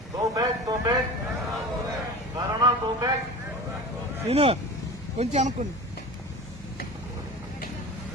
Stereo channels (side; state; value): both; normal; correlation 0.34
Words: go back go back corona go back. Scene కొంచెం అనుకోండి.